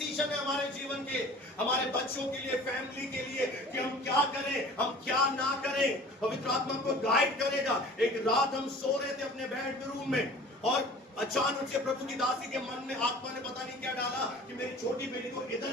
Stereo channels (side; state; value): both; normal; correlation 0.45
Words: है हमारे जीवन के, हमारे बच्चों के लिए, फैमिली के लिए, कि हम क्या करें, हम क्या ना करें। पवित्र आत्मा को गाइड करेगा। एक रात हम सो रहे थे अपने बेडरूम में और अचानक से प्रभु की दासी के मन में आत्मा ने पता नहीं क्या डाला कि मेरी छोटी बेटी को